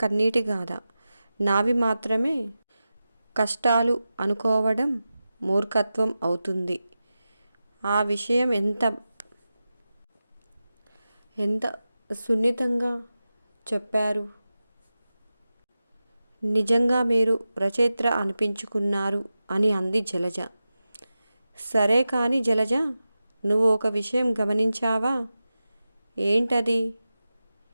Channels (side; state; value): both; inverted; correlation -0.93